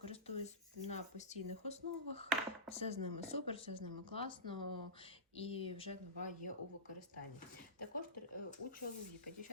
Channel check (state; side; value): normal; both; correlation -0.18